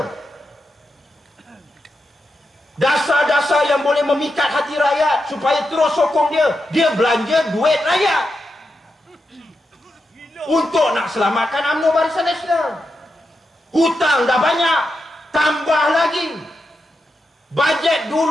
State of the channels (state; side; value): normal; both; correlation 0.87